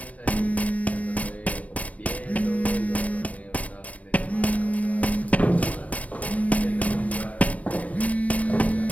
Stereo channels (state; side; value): late; right; 0.068 ms